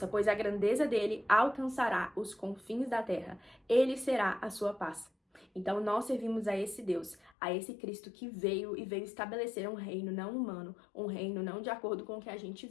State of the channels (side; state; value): right; drops out; at 7.3 s